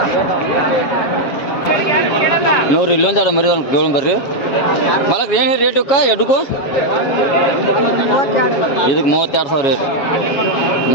ನೋಡ್ರಿ ಇಲ್ಲೊಂದು ಎರಡು ಮರಿ ಕೇಳೋಣ ಬರ್ರಿ ಮಾಲಕ್ರ. ಏನು ರೇಟ್ ಇವಕ್ಕ ಎಡ್ಗೂ? ಇದಕ್ಕೆ 32,000 ರೀ.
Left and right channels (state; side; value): late; right; 7.2 ms